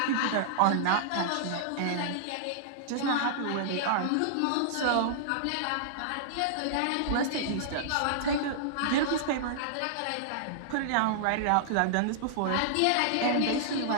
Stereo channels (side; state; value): both; different; correlation -0.02